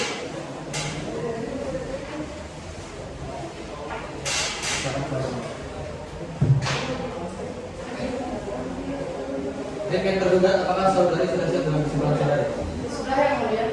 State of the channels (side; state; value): both; identical; correlation 1.00